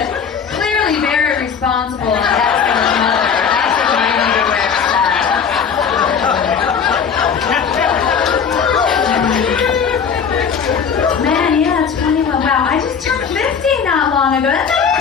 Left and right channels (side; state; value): right; quieter; 6.7 dB